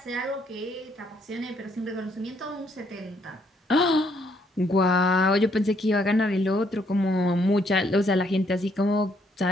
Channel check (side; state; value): both; normal; correlation 0.70